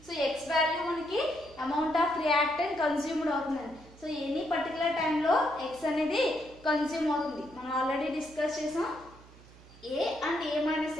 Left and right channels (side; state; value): right; noise; hum, 22 dB below the sound